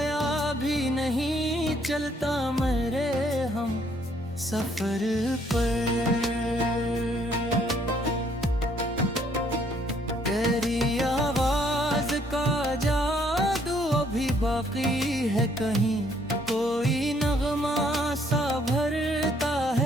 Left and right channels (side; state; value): both; normal; correlation 0.66